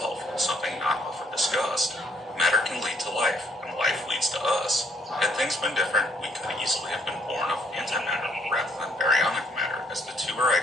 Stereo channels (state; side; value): normal; both; correlation 0.67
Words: something not often discussed. Matter can lead to life, and life leads to us. Had things been different, we could easily have been born of antimatter rather than baryonic matter, as the two are